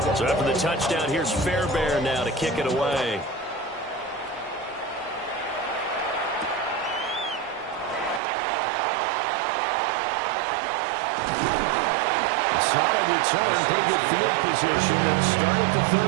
So after the touchdown, here's Fairbairn now to kick it away. A solid return, pretty good field position. They'll start at the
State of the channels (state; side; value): drops out; left; at 8.2 s